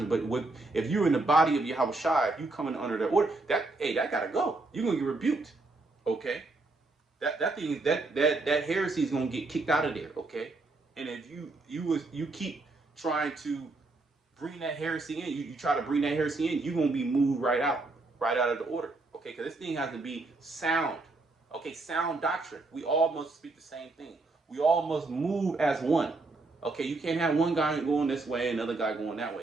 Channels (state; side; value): quieter; left; 3.3 dB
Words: But if you're in the body of Yahweh Shai, if you coming under that order, that gotta go. You're gonna get rebuked. Okay? That heresy is gonna get kicked out of there. Okay? And if you keep trying to bring that heresy in, you try to bring that heresy in, you're gonna be moved right out of the order. Okay? Because this thing has to be sound. Okay, sound doctrine. We all must speak the same thing. We all must move as one. Okay, you can't have one guy going this way and another guy going that